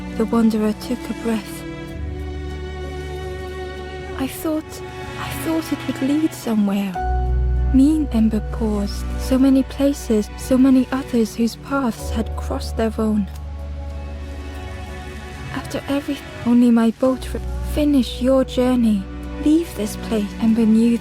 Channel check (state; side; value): identical; both; correlation 1.00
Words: The Wanderer took a breath. I thought it would lead somewhere. Me, Ember paused. So many places, so many others whose paths had crossed their own. After everything, only my boat finish your journey. Leave this place. Ember knew